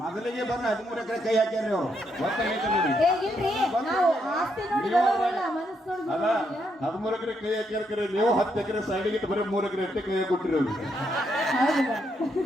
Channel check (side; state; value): both; normal; correlation 0.77